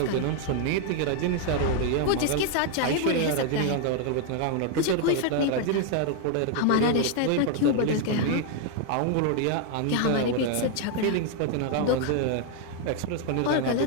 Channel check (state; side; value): different; both; correlation 0.00